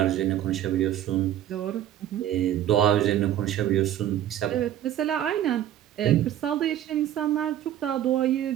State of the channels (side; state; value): left; quieter; 11.6 dB